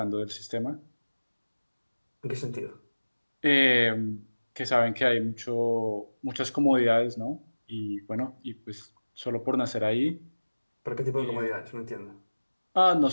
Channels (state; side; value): inverted; both; correlation -1.00